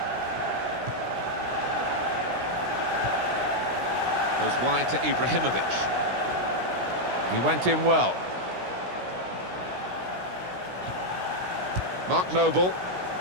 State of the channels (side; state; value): left; late; 16 ms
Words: Goes wide to Ibrahimovic. He went in well. Mark Noble.